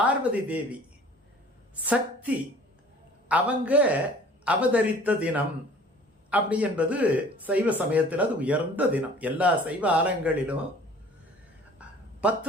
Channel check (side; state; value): both; normal; correlation 0.49